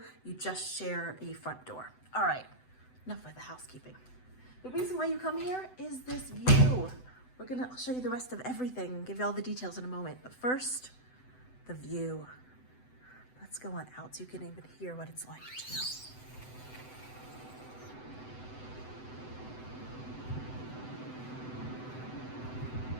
You just share a front door. All right, enough with the housekeeping. The reason why you come here is this view. I'll show you the rest of everything, give you all the details in a moment. But first, the view. Let's go on out so you can even hear what it's like too.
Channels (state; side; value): late; right; 7.9 ms